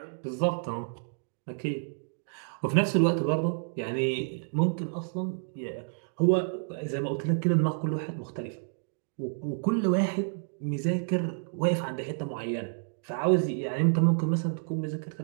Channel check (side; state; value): left; silent; digital silence